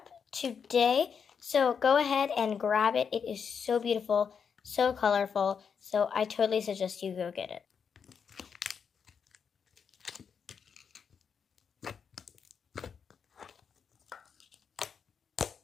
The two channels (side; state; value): right; quieter; 6.6 dB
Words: today, so go ahead and grab it. It is so beautiful, so colorful, so I totally suggest you go get it.